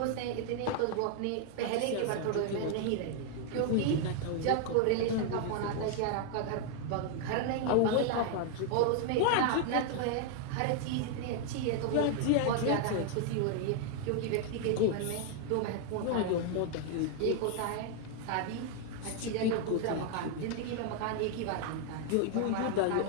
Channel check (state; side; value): different; both; correlation 0.00